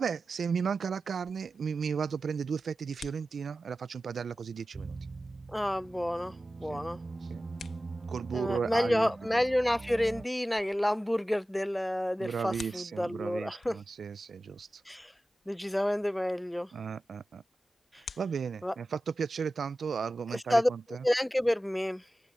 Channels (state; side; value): normal; both; correlation 0.95